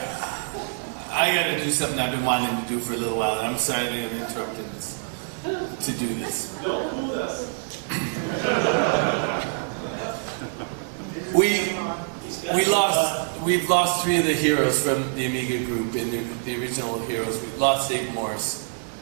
I gotta do something I've been wanting to do for a little while. I'm sorry that I'm interrupting this to do this. Don't do this. We've lost 3 of the heroes from the Amiga group in the original heroes. We lost Dave Morse,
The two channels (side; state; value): left; silent; digital silence